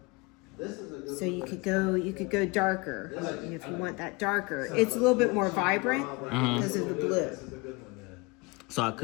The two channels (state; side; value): quieter; right; 25.9 dB